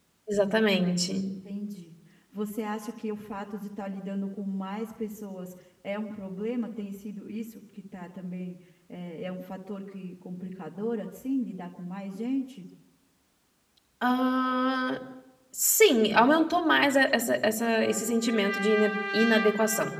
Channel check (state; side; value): identical; both; correlation 1.00